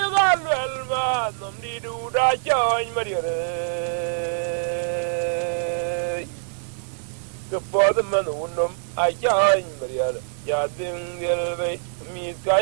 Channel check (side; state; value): left; silent; digital silence